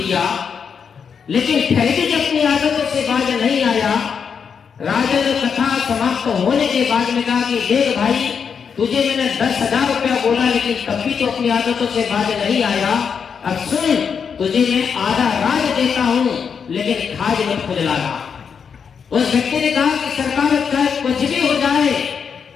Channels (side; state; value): right; quieter; 6.6 dB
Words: लेकिन फिर भी जब अपनी आदतों से बाज नहीं आया। राजा ने कथा समाप्त होने के बाद में कहा कि देख भाई, तुझे मैंने 10,000 रुपया बोला लेकिन तब भी तो अपनी आदतों से बाज नहीं आया। अब सुन, तुझे मैं आधा राज देता हूं लेकिन खाज मत खुजलाना। उस व्यक्ति ने कहा कि सरकार चाहे कुछ भी हो जाए